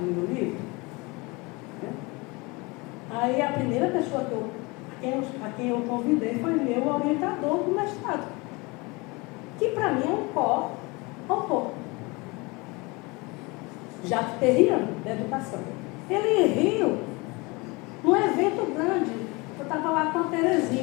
livro? Né? Aí a primeira pessoa a quem eu convidei foi meu orientador do mestrado, que para mim é um co-autor, Jacques Terrian, da educação. Ele riu num evento grande. Eu estava lá com a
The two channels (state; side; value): quieter; right; 25.8 dB